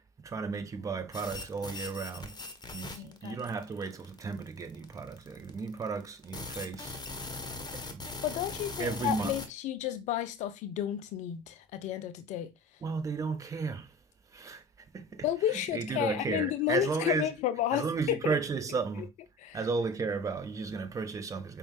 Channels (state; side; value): normal; both; correlation 0.39